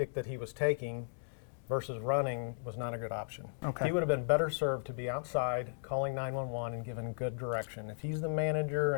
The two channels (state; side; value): silent; right; digital silence